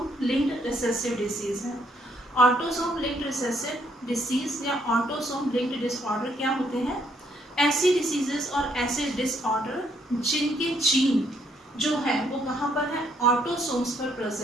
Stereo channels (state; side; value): normal; both; correlation 0.70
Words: लिंक्ड रिसेसिव डिसीज है। ऑटोसोम लिंक्ड रिसेसिव डिसीज या ऑटोसोम लिंक्ड डिसऑर्डर क्या होते हैं? ऐसी डिसीजेस और ऐसे डिसऑर्डर जिनके जीन जो है वो कहाँ पर है? ऑटोसोम्स पर